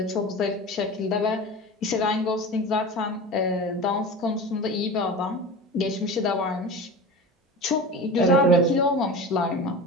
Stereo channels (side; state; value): both; normal; correlation 0.31